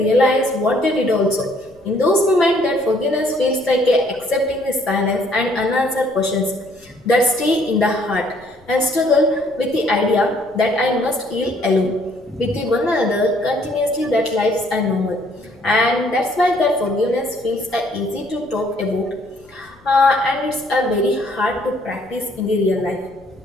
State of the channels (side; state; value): left; noise; rumble, 29 dB below the sound